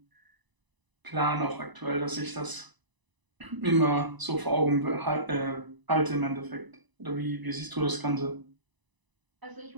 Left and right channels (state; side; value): late; left; 1.0 ms